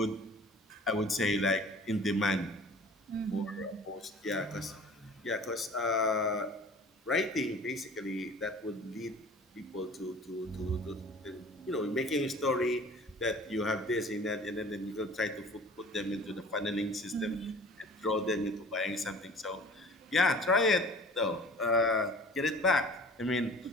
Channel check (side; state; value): both; normal; correlation 0.45